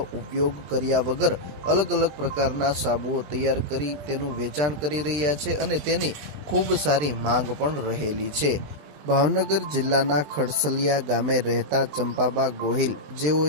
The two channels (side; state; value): left; late; 20 ms